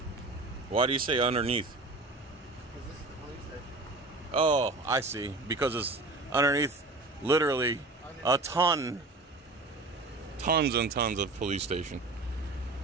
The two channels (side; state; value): left; quieter; 3.2 dB